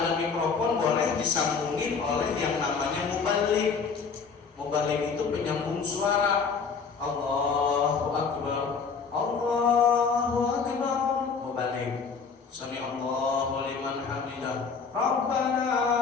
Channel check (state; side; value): quieter; right; 5.5 dB